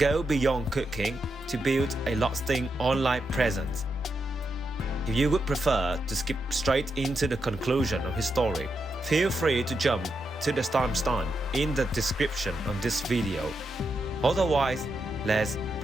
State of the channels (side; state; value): both; normal; correlation 0.84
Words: beyond cooking to build a lasting online presence. If you would prefer to skip straight into the conclusion of his story, feel free to jump to the timestamp in the description of this video. Otherwise, let's